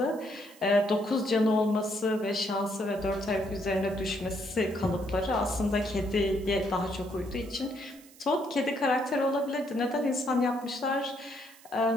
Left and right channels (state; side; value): noise; right; hiss, 23 dB below the sound